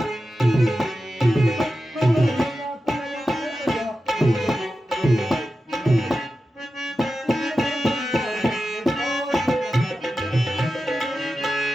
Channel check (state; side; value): normal; both; correlation 0.92